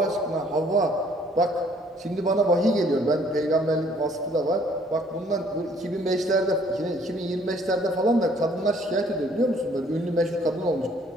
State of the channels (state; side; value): normal; both; correlation 0.61